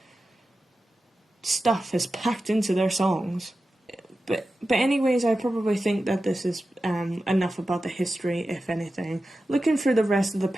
stuff is packed into their songs. But anyways, I probably think that this is enough about the history, if anything. Looking through the rest of the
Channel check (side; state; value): both; normal; correlation 0.93